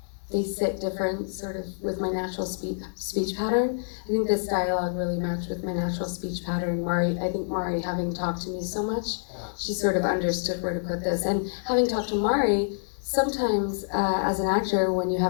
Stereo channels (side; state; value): right; silent; digital silence